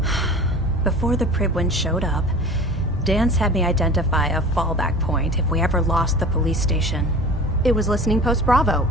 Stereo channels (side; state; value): both; normal; correlation 0.38